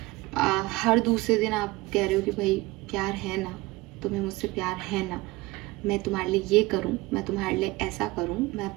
हर दूसरे दिन आप कह रहे हो कि भाई प्यार है ना, तुम्हें मुझसे प्यार है ना, मैं तुम्हारे लिए ये करूं, मैं तुम्हारे लिए ऐसा करूं, मैं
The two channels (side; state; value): left; quieter; 20.9 dB